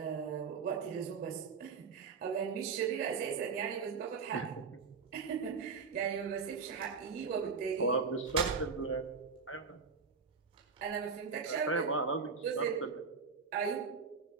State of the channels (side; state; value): left; quieter; 5.2 dB